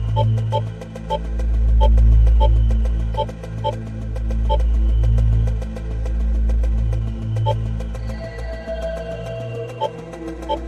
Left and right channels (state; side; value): identical; both; correlation 1.00